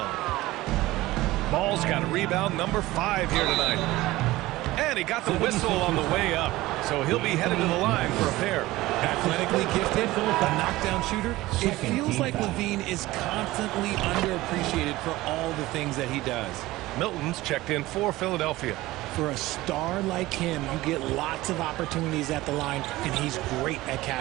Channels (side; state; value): left; quieter; 18.1 dB